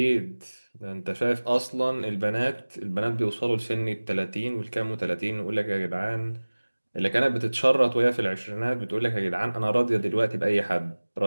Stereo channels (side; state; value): both; inverted; correlation -1.00